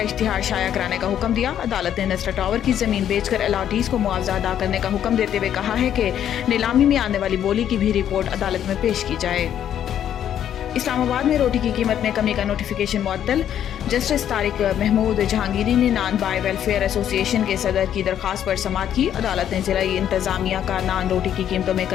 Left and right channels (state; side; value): quieter; right; 10.1 dB